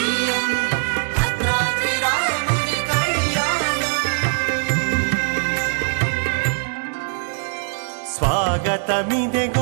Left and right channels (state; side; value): silent; left; 62 dB below the other